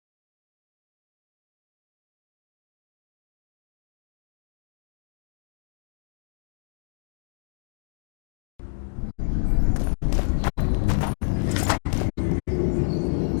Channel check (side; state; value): right; silent; digital silence